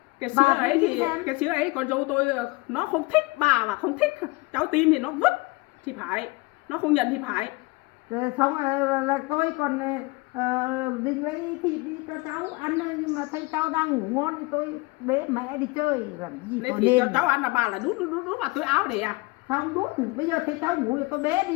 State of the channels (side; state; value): right; quieter; 24.6 dB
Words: Cái Bà sữa cứ ấy nghĩ thì xem. cái sữa ấy con dâu tôi nó không thích, bà mà không thích, cháu tin thì nó vứt thì phải, nó không nhận thì phải. Rồi xong rồi là tôi còn định lấy thịt đi cho cháu ăn thôi, nhưng mà thấy cháu đang ngủ ngon thì tôi bế mẹ đi chơi làm gì Lấy tôi thịt cho nên. cháu ăn là bà là đút vào túi áo để à? Xong đút, bây giờ thấy cháu ngủ thì tôi bế